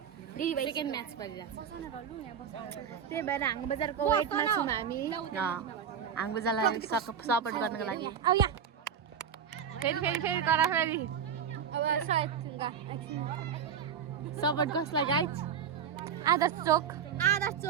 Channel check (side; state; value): left; quieter; 7.6 dB